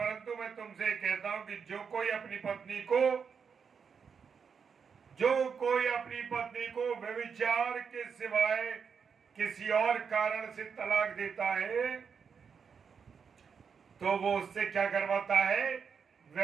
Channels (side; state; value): left; quieter; 6.3 dB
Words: मैं तुमसे कहता हूं कि जो कोई अपनी पत्नी को व्यभिचार के सिवाय किसी और कारण से तलाक देता है तो वो उससे क्या करवाता है?